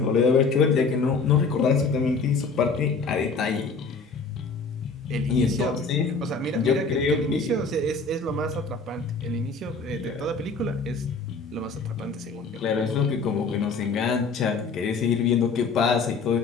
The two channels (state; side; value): quieter; right; 4.4 dB